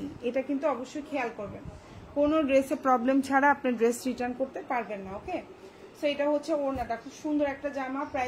এটা কিন্তু অবশ্যই খেয়াল করবেন। কোনো ড্রেসে প্রবলেম ছাড়া আপনি ড্রেস রিটার্ন করতে পারবেন না, ওকে? সো এটা হচ্ছে ওড়নাটা, খুব সুন্দর একটা জামা,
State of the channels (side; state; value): both; identical; correlation 1.00